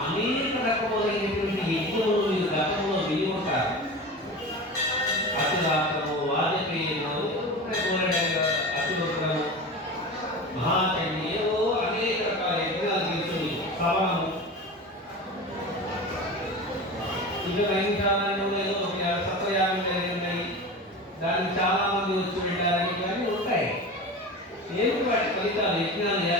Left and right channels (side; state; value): both; normal; correlation 0.30